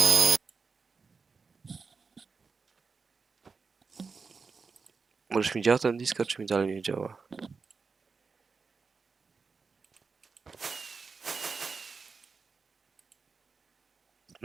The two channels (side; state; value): left; quieter; 4.8 dB